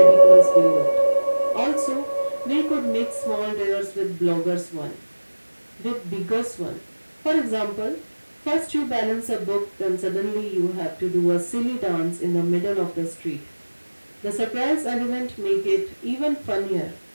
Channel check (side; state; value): both; inverted; correlation -1.00